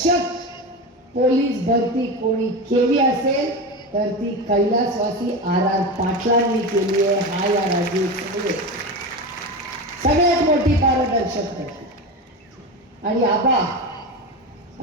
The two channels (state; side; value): normal; both; correlation 0.22